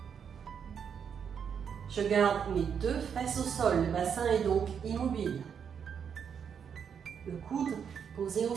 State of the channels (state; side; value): quieter; left; 7.4 dB